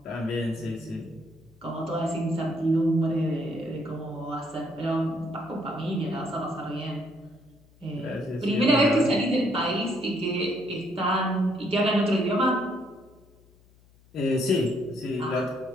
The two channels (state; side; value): noise; left; hum, 28 dB below the sound